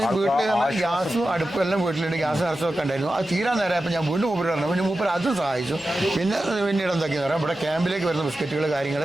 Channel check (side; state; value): both; normal; correlation 0.93